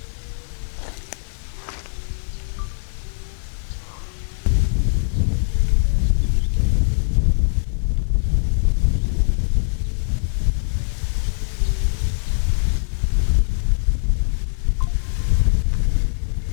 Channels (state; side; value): silent; right; digital silence